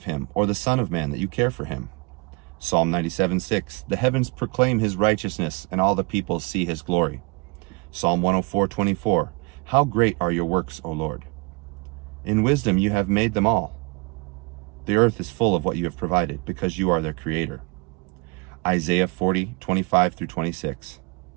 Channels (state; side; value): quieter; left; 27.8 dB